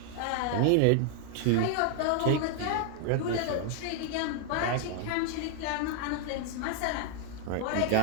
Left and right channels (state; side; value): different; both; correlation 0.00